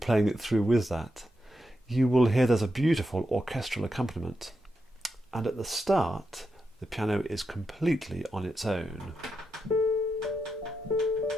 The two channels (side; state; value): both; normal; correlation 0.86